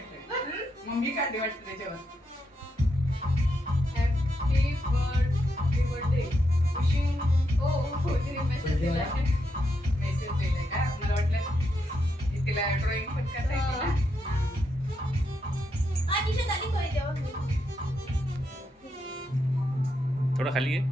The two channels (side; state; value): both; normal; correlation 0.82